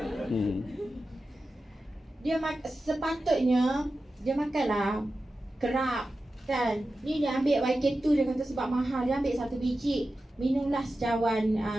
Sepatutnya dia makanlah kerap kan. Ni dia ambil YK2, dia kata sebab mahal, dia ambil 1 biji. Minumlah secawan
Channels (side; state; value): both; normal; correlation 0.93